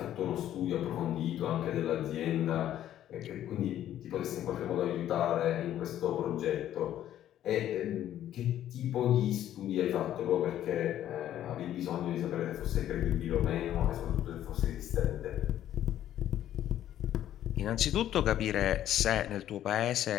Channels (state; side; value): quieter; right; 11.8 dB